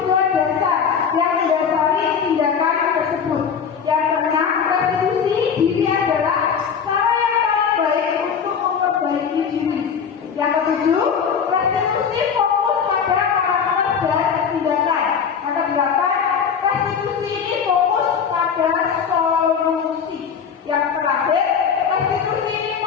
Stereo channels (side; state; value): right; quieter; 6.8 dB